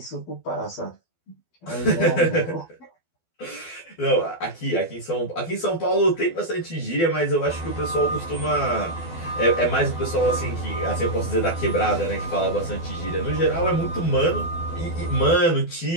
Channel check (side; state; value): right; late; 12 ms